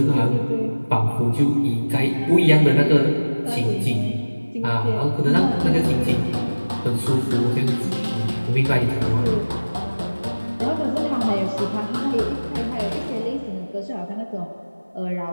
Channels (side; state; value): both; inverted; correlation -1.00